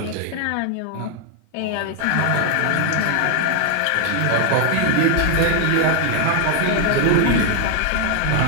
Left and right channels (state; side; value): different; both; correlation 0.00